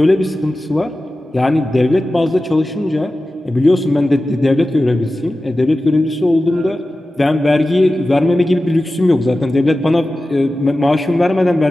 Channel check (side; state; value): both; normal; correlation 0.94